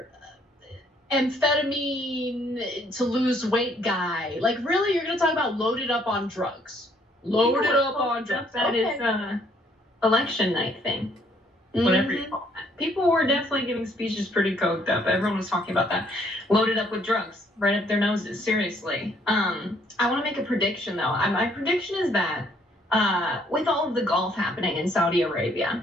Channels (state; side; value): normal; both; correlation 0.65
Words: Amphetamine to lose weight guy. Like, really, you're going to talk about loaded up on drugs? Loaded up on drugs. That is election night thing, whatever you call that. People were definitely giving speeches pretty coked up. Everyone was talking about that. Loaded up with drugs, right up their noses, seriously. I want to make a prediction, though. My prediction is that with all of the golf happening in Saudi